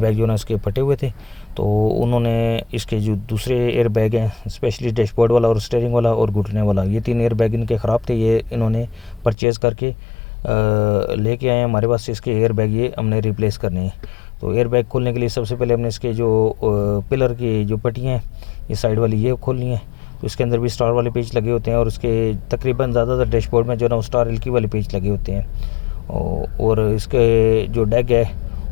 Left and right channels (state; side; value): drops out; right; at 9.3 s